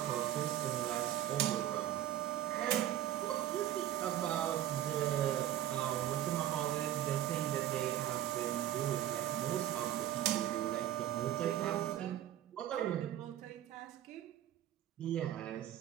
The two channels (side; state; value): left; quieter; 12.4 dB